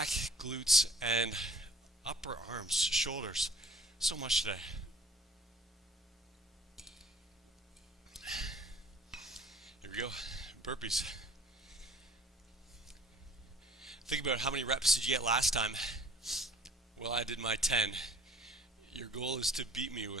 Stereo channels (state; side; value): normal; both; correlation 0.52